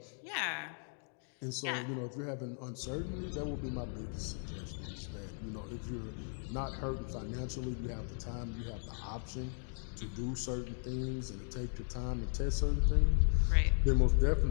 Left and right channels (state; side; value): silent; right; 53 dB below the other